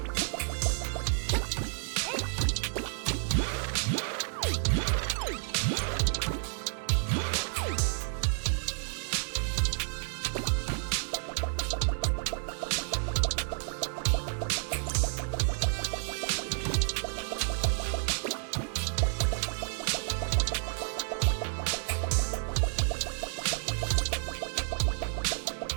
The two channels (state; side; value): silent; left; digital silence